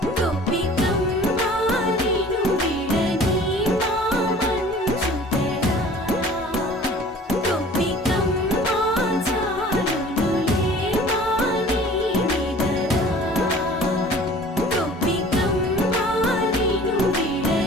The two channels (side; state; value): both; normal; correlation 0.48